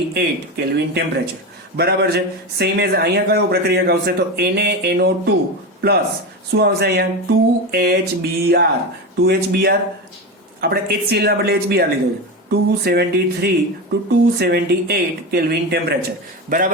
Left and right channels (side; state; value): both; normal; correlation 0.20